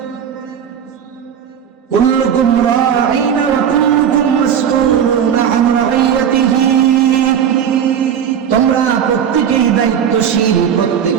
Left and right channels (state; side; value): quieter; left; 8.5 dB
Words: কুল্লুকুম রাঈন ওয়া কুল্লুকুম মাসউলুন আন রাইয়াতিহি, তোমরা প্রত্যেকেই দায়িত্বশীল,